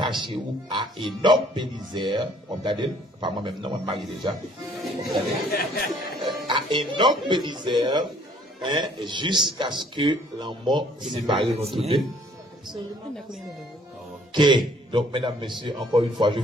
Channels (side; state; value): both; normal; correlation 0.60